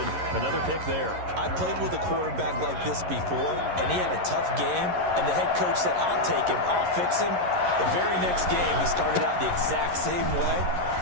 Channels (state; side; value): late; left; 11 ms